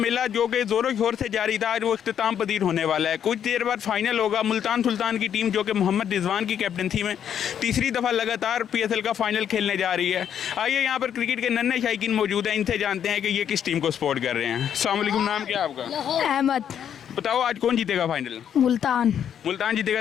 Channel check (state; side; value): quieter; right; 9.0 dB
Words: जो कि ज़ोरों शोर से जारी था आज वो इख्तिताम पजीर होने वाला है। कुछ देर बाद फाइनल होगा। मुल्तान सुल्तान की टीम जो कि मोहम्मद रिजवान की कैप्टनसी में तीसरी दफ़ा लगातार पीएसएल का फाइनल खेलने जा रही है। आइए यहाँ पर क्रिकेट के नन्हे शायकीन मौजूद हैं, इनसे जानते हैं कि ये किस टीम को सपोर्ट कर रहे हैं। अस्सलाम वालेकुम, नाम क्या है आपका? अहमद। बताओ आज कौन जीतेगा फाइनल? मुल्तान। मुल्तान